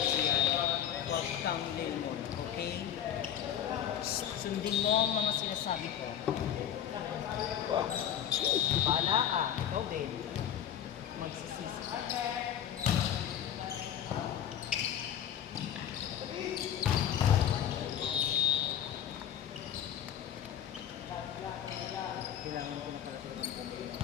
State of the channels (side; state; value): right; quieter; 9.9 dB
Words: huwag kang lemon, okay? Sundin mo ang mga sinasabi ko. Bahala ka, ikaw din. Magsisisi ka. Kailangan ko na pala talagang bumili ng